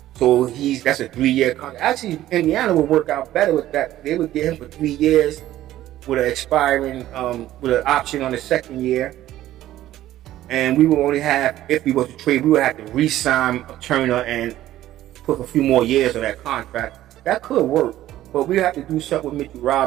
So that's a 3-year contract. Actually, Indiana would work out better with that. They would get him for 3 years with an expiring, with an option on the 2nd year. And we would only have, if we were to trade, we would have to re-sign Turner and put a few more years on that contract. That could work, but we have to do something with Mitchell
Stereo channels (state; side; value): quieter; left; 13.9 dB